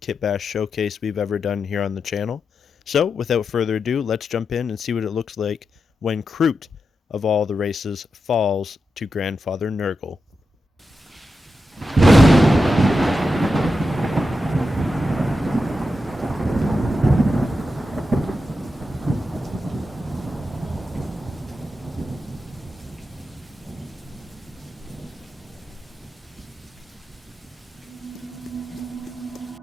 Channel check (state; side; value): normal; both; correlation 0.88